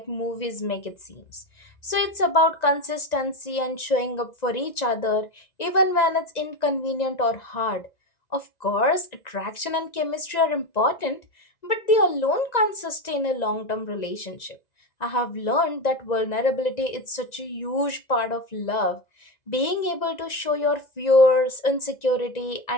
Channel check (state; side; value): late; right; 1.9 ms